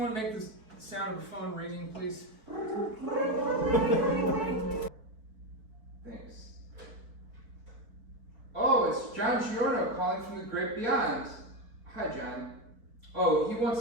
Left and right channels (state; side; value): late; left; 4.6 ms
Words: make the sound of the phone ringing, please? Thanks. Oh, it's John Giorno calling from the great beyond. Hi, John. Oh, he wants